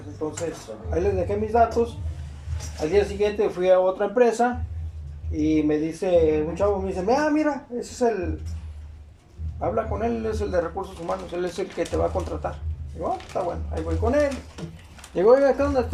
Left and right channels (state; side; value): identical; both; correlation 1.00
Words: Entonces, ahí les dejé mis datos. Al día siguiente fui a otra empresa y me dice, un chavo me dice, mira, ese es habla con él, él es el de recursos humanos, él es el que te va a contratar. Digo, está bueno, ahí voy con él. Digo, oiga, ¿qué onda?